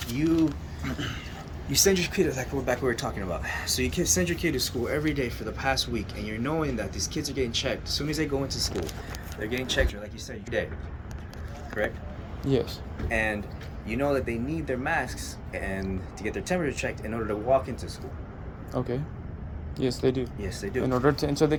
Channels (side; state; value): both; identical; correlation 1.00